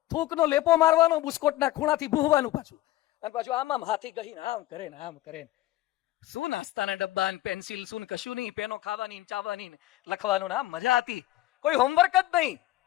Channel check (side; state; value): right; quieter; 16.0 dB